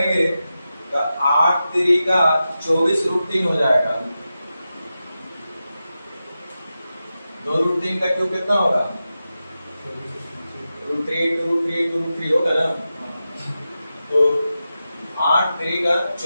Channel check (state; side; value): inverted; both; correlation -0.91